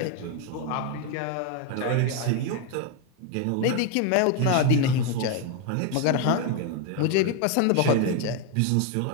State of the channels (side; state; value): both; different; correlation 0.02